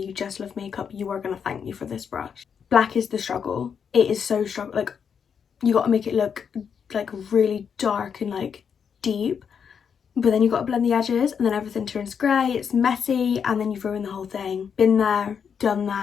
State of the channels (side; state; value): right; quieter; 7.0 dB